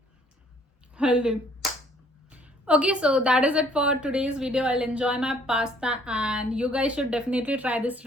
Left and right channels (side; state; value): both; normal; correlation 0.61